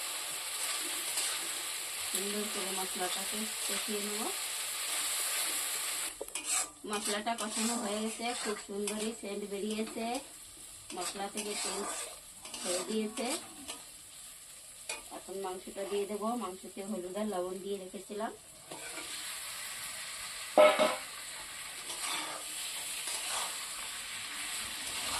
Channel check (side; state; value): both; identical; correlation 1.00